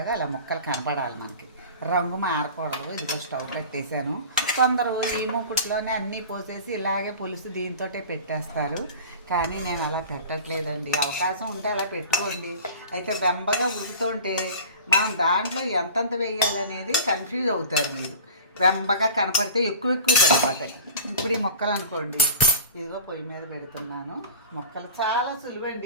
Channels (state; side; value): inverted; both; correlation -0.38